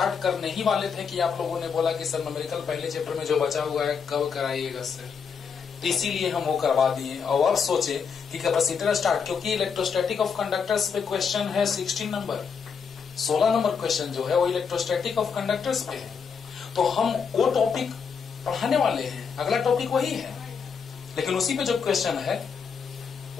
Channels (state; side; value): quieter; right; 6.2 dB